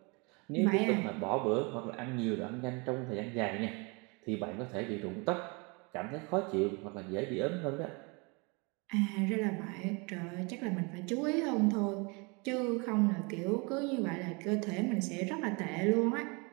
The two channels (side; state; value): left; quieter; 30.2 dB